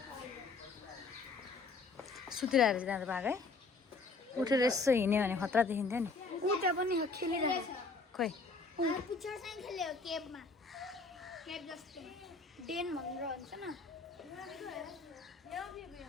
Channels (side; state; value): right; quieter; 4.0 dB